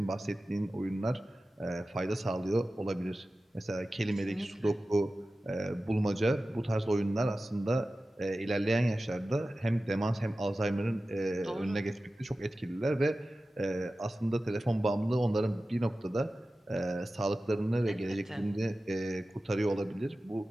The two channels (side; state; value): both; normal; correlation 0.95